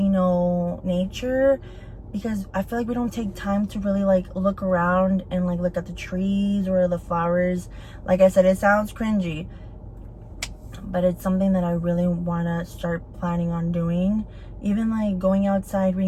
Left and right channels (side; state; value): both; identical; correlation 1.00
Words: know, nature, because I feel like we don't take time to really like look around and like look at the trees or the flowers. Like I said, it sounds cringy, but it's something that I really want to start planning on doing. Even like going outside,